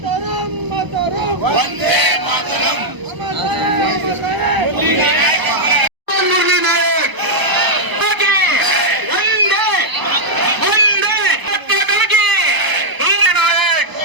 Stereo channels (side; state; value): left; late; 1.0 ms